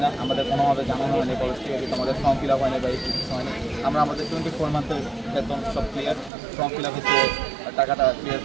না আমাদের কোনোভাবে জানানো হয়নি কলেজ থেকে কিন্তু আমাদের ফর্ম ফিল আপ হয়নি বা এই কিছু হয়নি আমরা আমাদের 24 মান্থের বেতন সব ক্লিয়ার ফর্ম ফিল আপ হচ্ছে টাকাটা ক্লিয়ার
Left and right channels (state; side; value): drops out; left; at 6.3 s